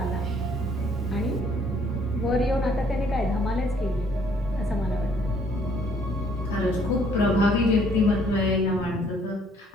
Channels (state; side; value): normal; both; correlation 0.63